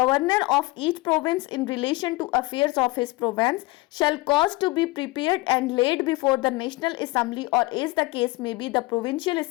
of each province in relation to affairs of his province shall cause to be prepared and laid before the National Assembly, or as the case may be the Provincial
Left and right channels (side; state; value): right; quieter; 21.6 dB